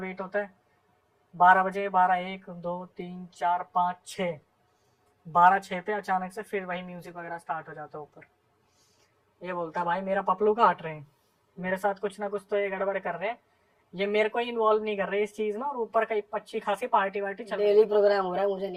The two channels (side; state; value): both; identical; correlation 1.00